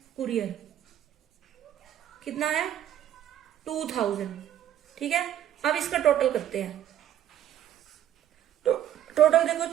कुरियर, कितना है 2,000, ठीक है। अब इसका टोटल करते हैं, तो टोटल देखो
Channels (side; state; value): left; quieter; 11.1 dB